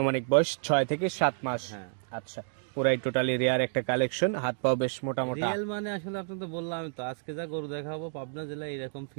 বয়স 6 থেকে 7 মাস। হ্যাঁ। আচ্ছা, পুরাই টোটালি রেয়ার একটা কালেকশন, হাত পাও বেশ মোটা মোটা। রিয়েল মানে আসলে আপনি তো বললাম তো, আজকে যা গরু দেখাবো পাবনা জেলায় এরকম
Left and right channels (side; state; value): left; silent; digital silence